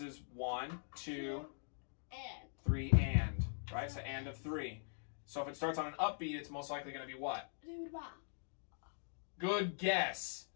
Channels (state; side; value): silent; right; digital silence